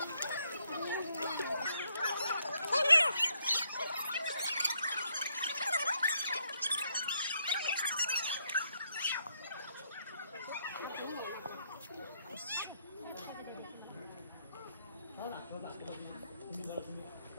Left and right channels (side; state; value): both; inverted; correlation -0.74